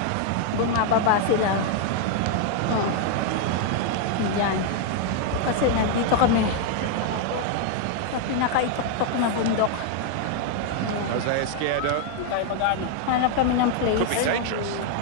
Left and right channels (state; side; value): different; both; correlation 0.00